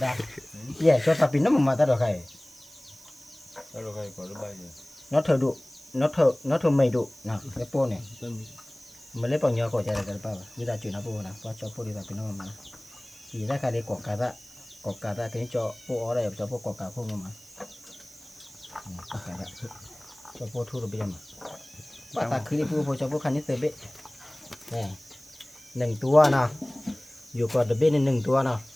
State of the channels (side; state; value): right; noise; hiss, 22 dB below the sound